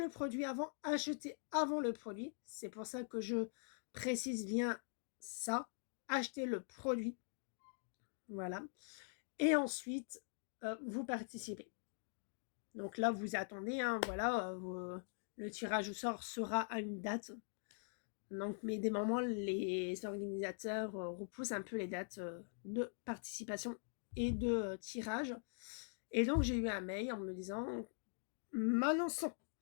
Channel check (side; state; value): right; silent; digital silence